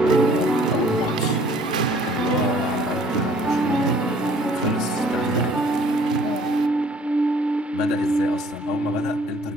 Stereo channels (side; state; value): both; normal; correlation 0.57